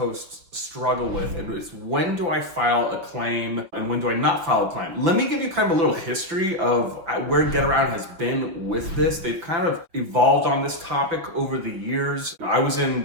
struggle with, and it's when do I file a claim and when do I not file a claim? Let me give you kind of a little history of where Getaround has been with this. They've kind of evolved on this topic over the years. I was in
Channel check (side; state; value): left; late; 6.0 ms